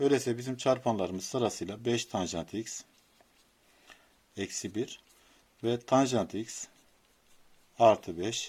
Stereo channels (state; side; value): identical; both; correlation 1.00